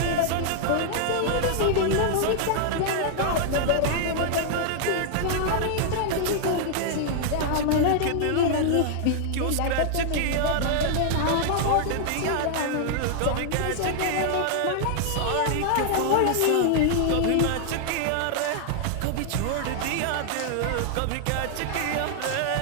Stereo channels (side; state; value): both; different; correlation 0.00